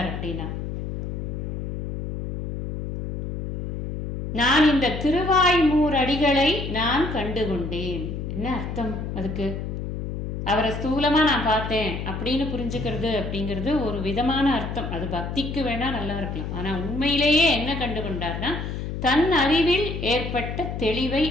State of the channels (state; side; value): noise; left; hum, 5 dB below the sound